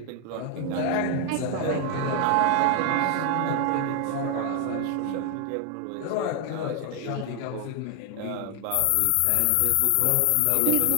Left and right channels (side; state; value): both; different; correlation 0.00